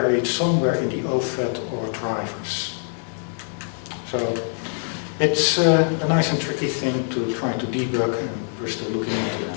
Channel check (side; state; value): right; silent; digital silence